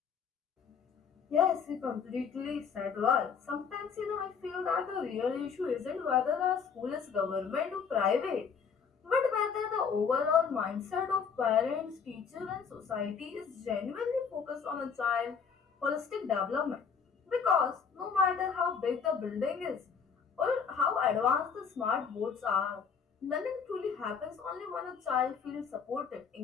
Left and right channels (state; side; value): quieter; right; 6.3 dB